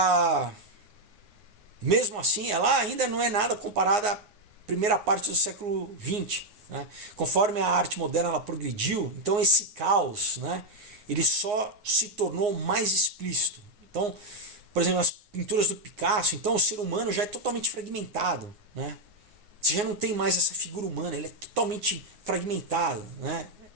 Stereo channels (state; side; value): late; left; 9.6 ms